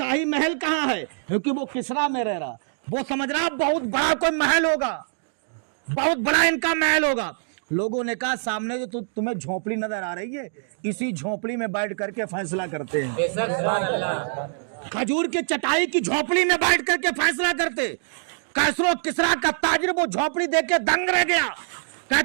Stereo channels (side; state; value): left; silent; digital silence